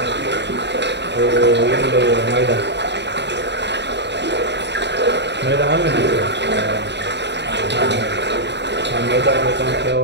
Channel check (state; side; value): late; left; 0.51 ms